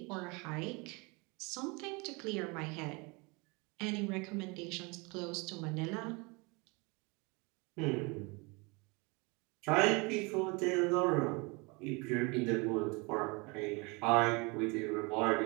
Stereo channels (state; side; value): quieter; left; 28.3 dB